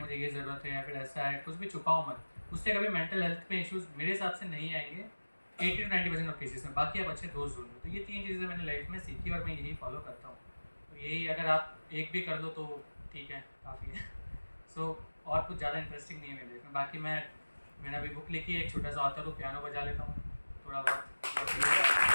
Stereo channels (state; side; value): inverted; both; correlation -1.00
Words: ये ज़रूरत है, या फिर ऐसा है. कुछ भी छुपाओ मत. उससे कभी मेंटल हेल्थ पे इश्यूज़ मेरे हिसाब से नहीं आएंगे 80 to 90% ऑफ केसेस में. बाकी आप अच्छे दोस्त ढूंढो. तो ये 3 चीज़ें मैंने लाइफ में सीखी और मैं यही फॉलो करता हूँ. तो यही अगर आप एक भी कर दो तो ठीक है, काफ़ी है. सो और कुछ ज़्यादा इंटरेस्टिंग नहीं है मेरे लाइफ में. बाकी मैंने अभी बुक लिखी है, एक छोटा सा ऑथर हूँ, पियानो बजा लेता हूँ थोड़ा बहुत.